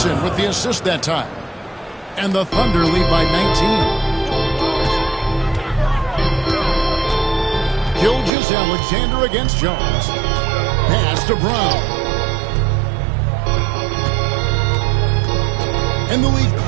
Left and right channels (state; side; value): drops out; left; at 8.3 s